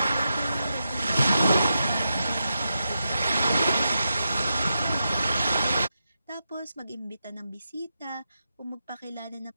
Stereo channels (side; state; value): both; inverted; correlation -0.87